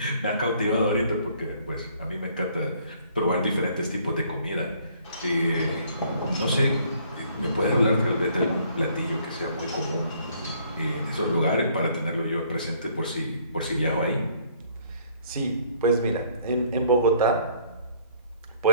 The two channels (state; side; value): inverted; both; correlation -0.61